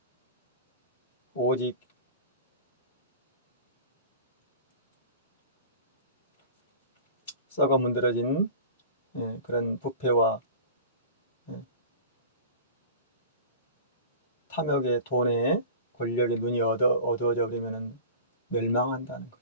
오직 썩어 문드러진 그런 부패와 탐욕의 돈에 권력의 눈이 어두워져 버리면 멸망한다는 거죠.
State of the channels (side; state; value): both; inverted; correlation -0.37